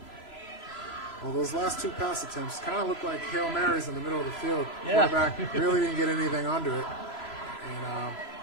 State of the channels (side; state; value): right; late; 3.0 ms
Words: Well, those last 2 pass attempts kind of look like Hail Marys in the middle of the field. Yeah. Quarterback really didn't get anything under it. And